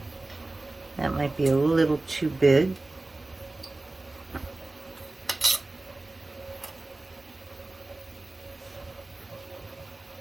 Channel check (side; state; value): left; quieter; 3.0 dB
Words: That might be a little too big.